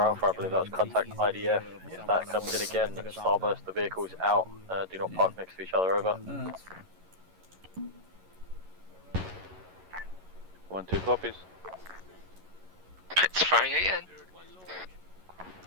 I believe that was contact IDF. If that comes in again, starburst the vehicles out. Do not park next to each other. Over. 1 2 copies. It's firing again.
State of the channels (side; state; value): left; late; 11 ms